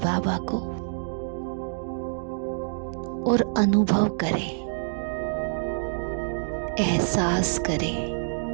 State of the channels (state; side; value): silent; left; digital silence